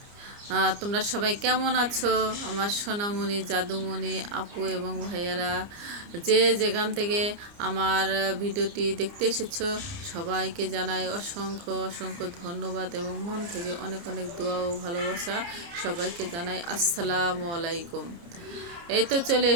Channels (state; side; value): late; left; 29 ms